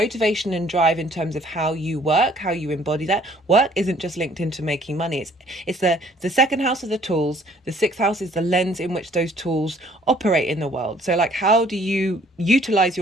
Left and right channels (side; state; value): both; normal; correlation 0.59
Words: and drive in terms of how you work, how you embody that? Work isn't just linked into making money. It's the second house of the tools. The 6th house is the lens in which those tools operate in the world. So like, how do you utilize